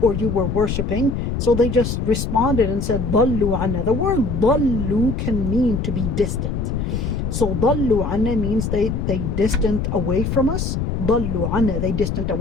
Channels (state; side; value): noise; left; rumble, 2 dB below the sound